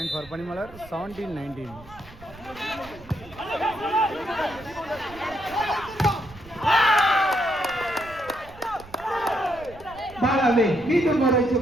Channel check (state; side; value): noise; right; rumble, 20 dB below the sound